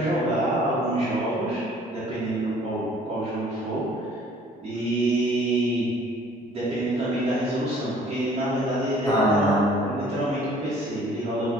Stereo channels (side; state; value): both; normal; correlation 0.55